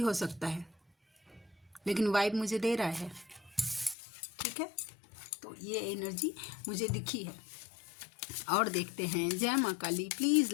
सकता है। लेकिन वाइब मुझे दे रहा है। ठीक है, तो ये एनर्जी मुझे दिखी है। और देखते हैं, जय माँ काली, प्लीज़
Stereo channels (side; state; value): right; drops out; at 4.0 s